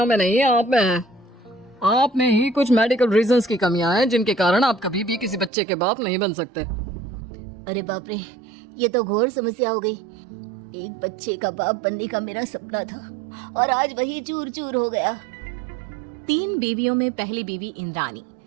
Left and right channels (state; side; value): drops out; left; at 5.5 s